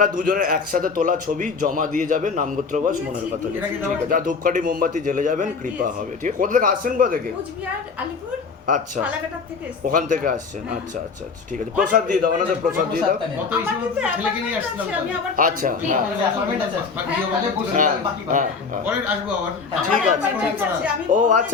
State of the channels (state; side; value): quieter; right; 5.0 dB